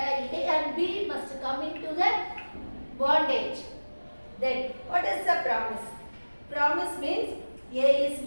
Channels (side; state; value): both; inverted; correlation -1.00